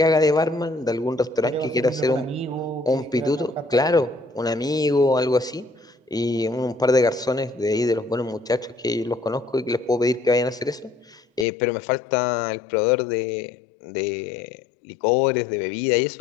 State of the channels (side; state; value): right; drops out; at 11.5 s